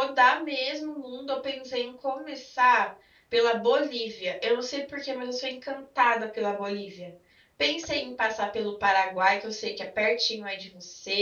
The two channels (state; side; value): identical; both; correlation 1.00